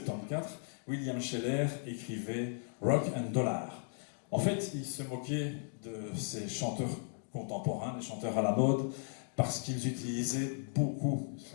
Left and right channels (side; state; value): right; silent; digital silence